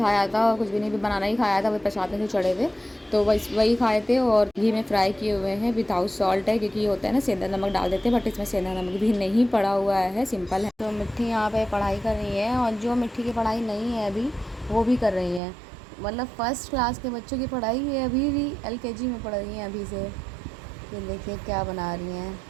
था और कुछ भी नहीं भी बनाना ही खाया था, वो प्रसाद में जो चढ़े थे तो वही खाए थे। और घी में फ्राई किए हुए हैं, विदाउट सॉल्ट है क्योंकि ये होता है ना सेंधा नमक डाल देते हैं, बट इसमें सेंधा नमक भी नहीं पड़ा हुआ है, सिंपल है। तो मिट्टी यहाँ पे पढ़ाई कर रही है, और जो मिट्टी की पढ़ाई नहीं है अभी वो भी कर रही है। मतलब फर्स्ट क्लास के बच्चों की पढ़ाई है, अभी भी LKG में पढ़ रही हैं अभी से। ये देखिए क्या बना रही हैं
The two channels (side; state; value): left; drops out; at 15.4 s